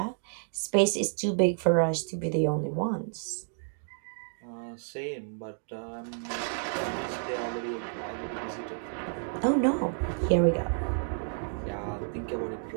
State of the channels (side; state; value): left; silent; 57 dB below the other